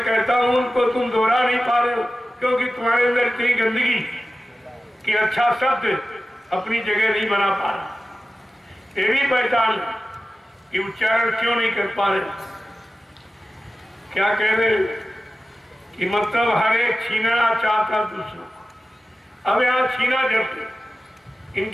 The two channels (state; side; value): normal; both; correlation 0.94